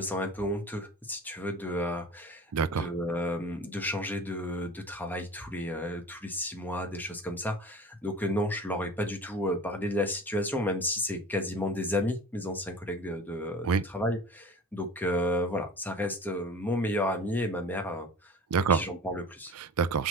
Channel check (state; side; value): normal; both; correlation 0.37